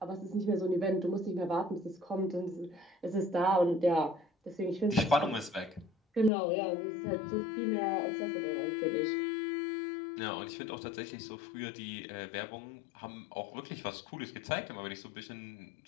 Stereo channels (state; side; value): drops out; right; at 6.3 s